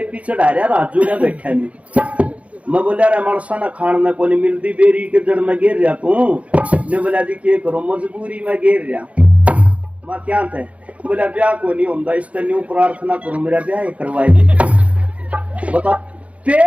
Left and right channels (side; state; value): left; late; 0.065 ms